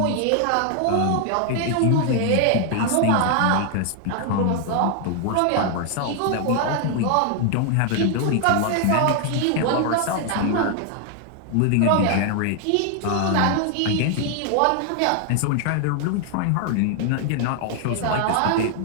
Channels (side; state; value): both; different; correlation 0.00